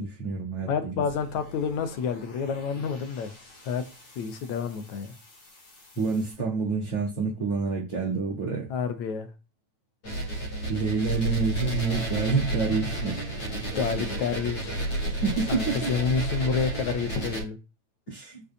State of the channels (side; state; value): right; late; 9.1 ms